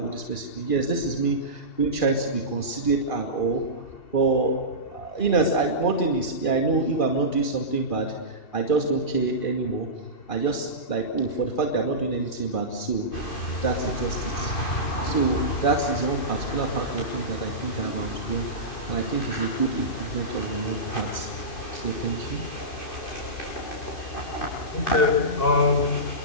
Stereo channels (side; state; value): right; late; 2.6 ms